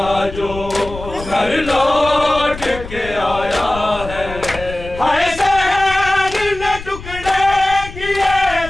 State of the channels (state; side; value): noise; left; rumble, 13 dB below the sound